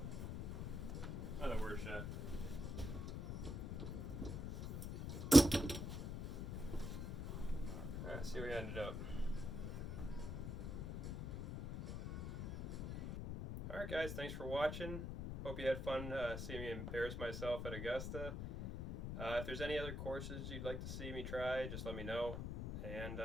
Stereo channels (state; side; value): noise; left; rumble, 5 dB below the sound